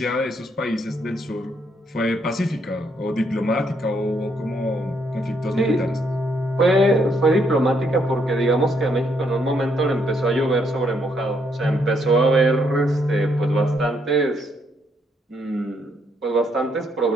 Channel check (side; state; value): both; normal; correlation 0.73